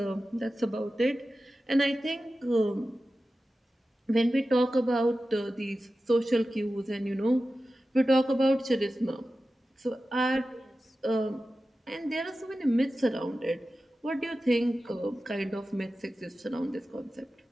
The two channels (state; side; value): normal; both; correlation 0.94